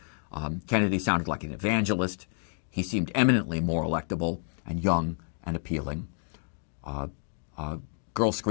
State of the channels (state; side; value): silent; right; digital silence